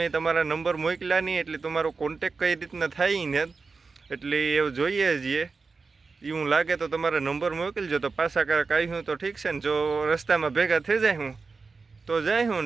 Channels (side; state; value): left; quieter; 4.4 dB